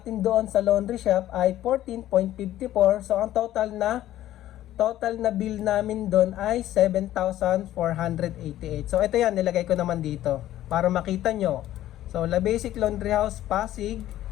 doon sa laundry shop ay 14.54. So, ang total na bill namin doon ay 7,488. So, ito yan, nilagay ko naman dito para makita nyo. So, La Basic Laundry House Pasig,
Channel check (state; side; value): quieter; right; 13.5 dB